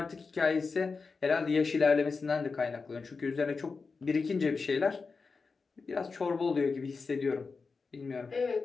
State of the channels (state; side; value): quieter; right; 4.6 dB